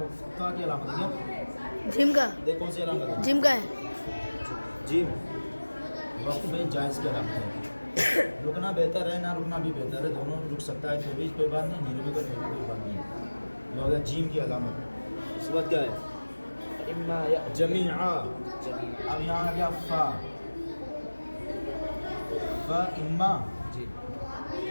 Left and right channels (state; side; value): inverted; both; correlation -1.00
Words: کی علامت ہے کیا؟ جیم کا. دیکھ کون سی علامت ہے؟ جیم کا ہے. جیم وقف جائز کی علامت ہے. رکنا بہتر ہے، نہ رکنا بھی بہتر ہے. دونوں رک سکتا ہے تو بھی کوئی بات نہیں، نہیں رکے گا کوئی بات نہیں. یہ ہو گیا جیم کی علامت. اس کے بعد کیا ہے؟ جمیعا. اب یہاں آ گیا فا. فا اما.